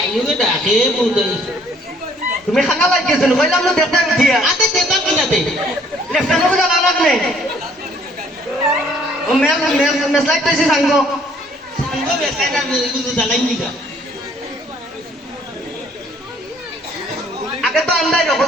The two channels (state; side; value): normal; both; correlation 0.61